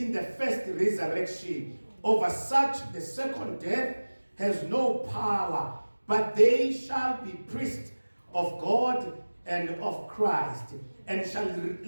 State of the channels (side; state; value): both; inverted; correlation -1.00